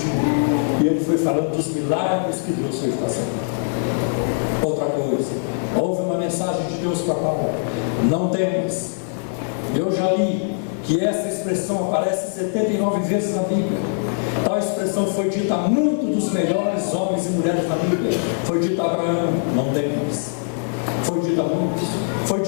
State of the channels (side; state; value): right; silent; digital silence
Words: tinha. E ele foi falando dos milagres que Deus fez passar. Outra coisa, houve uma mensagem de Deus para Paulo: não temas. Eu já li que essa expressão aparece 79 vezes na Bíblia. Tal expressão foi dita a muitos dos melhores homens e mulheres da Bíblia. Foi dita a Abraão: não temas. Foi dito a muitos, foi